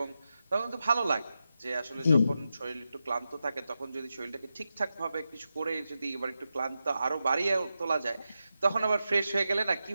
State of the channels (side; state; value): both; inverted; correlation -0.89